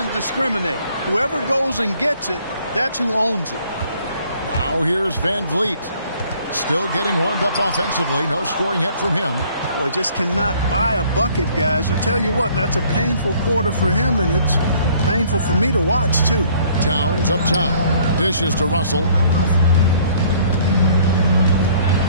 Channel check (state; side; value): inverted; both; correlation -0.58